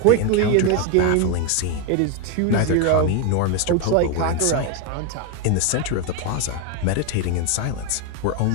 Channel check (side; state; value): both; different; correlation 0.02